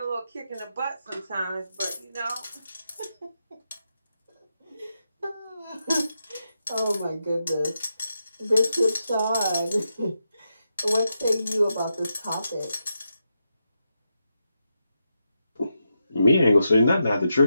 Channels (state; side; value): inverted; both; correlation -0.86